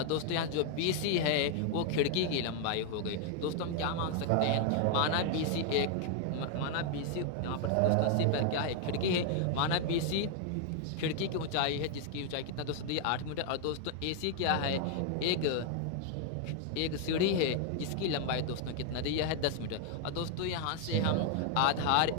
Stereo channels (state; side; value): different; both; correlation 0.00